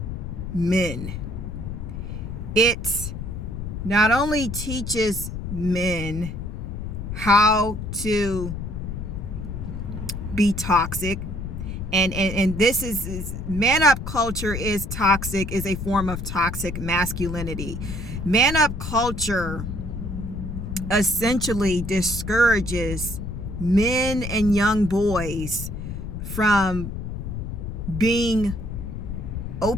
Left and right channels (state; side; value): noise; left; rumble, 6 dB below the sound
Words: men. It not only teaches men how to be toxic, and this is man up culture is toxic, is a form of toxic masculinity. Man up culture essentially discourages men and young boys from being